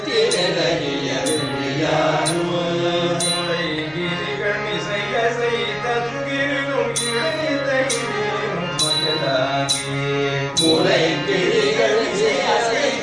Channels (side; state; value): both; identical; correlation 1.00